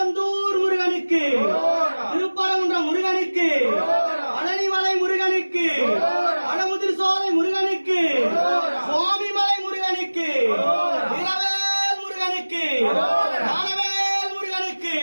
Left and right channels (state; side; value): inverted; both; correlation -1.00